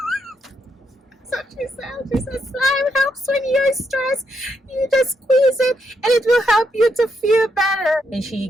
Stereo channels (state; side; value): normal; both; correlation 0.79